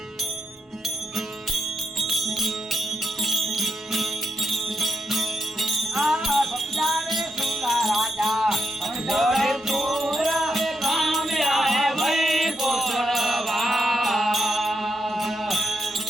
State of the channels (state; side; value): normal; both; correlation 0.83